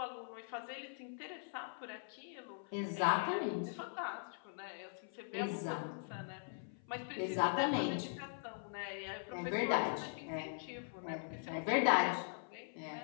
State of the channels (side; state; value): right; silent; 50 dB below the other